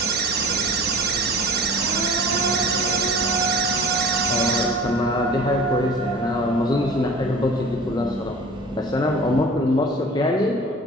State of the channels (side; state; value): both; normal; correlation 0.42